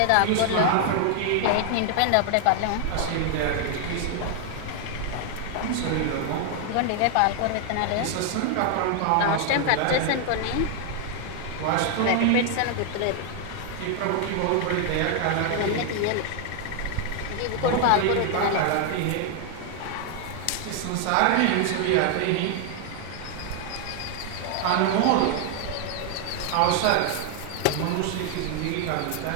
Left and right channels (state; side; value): different; both; correlation 0.00